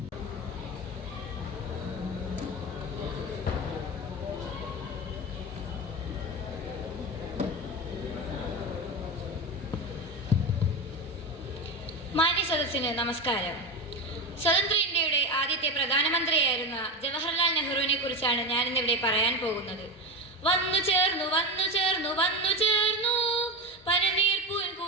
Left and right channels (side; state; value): both; normal; correlation 0.20